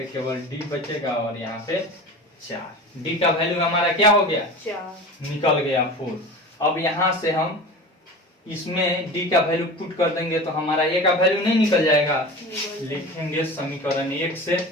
केवल d बचेगा और यहाँ पे 4। d का वैल्यू हमारा क्या हो गया, 4 निकल गया 4। अब यहाँ से हम इसमें d का वैल्यू पुट कर देंगे तो हमारा a का वैल्यू नहीं निकल जाएगा। लिखेंगे समीकरण 1 से,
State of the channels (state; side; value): normal; both; correlation 0.33